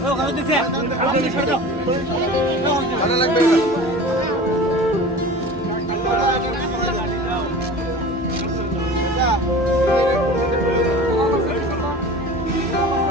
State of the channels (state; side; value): normal; both; correlation 0.37